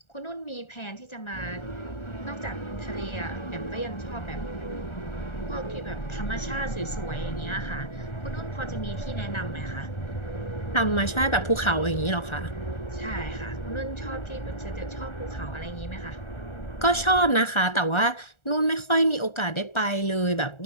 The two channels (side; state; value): right; late; 1.4 ms